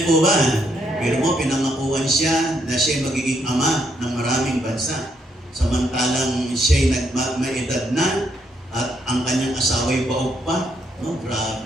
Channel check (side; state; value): both; normal; correlation 0.74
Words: po ba? Pero mo, pinangakuan siya na siya magiging ama ng maraming bansa. Samantalang siya'y may edad na at ang kanyang asawa'y baog pa. No,